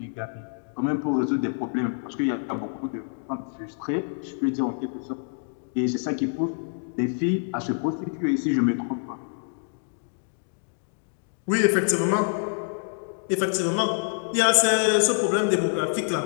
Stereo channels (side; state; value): right; silent; 60 dB below the other